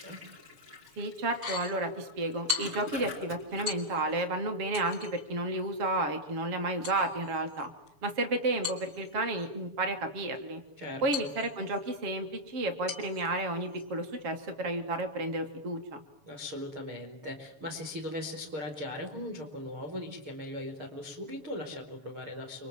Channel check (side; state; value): left; late; 7.0 ms